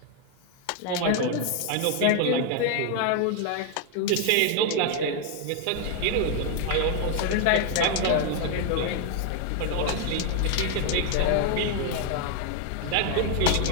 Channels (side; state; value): both; different; correlation 0.00